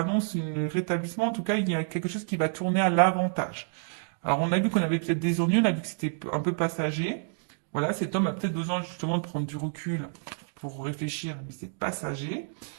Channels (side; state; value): left; silent; digital silence